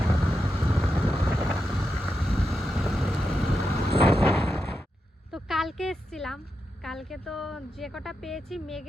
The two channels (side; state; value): both; normal; correlation 0.87